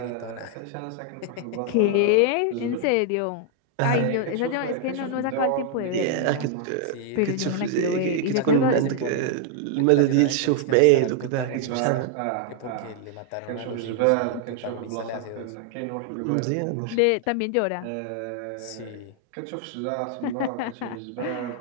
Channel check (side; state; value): both; different; correlation 0.00